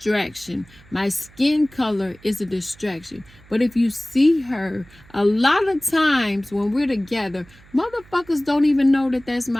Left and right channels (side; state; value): right; noise; hum, 25 dB below the sound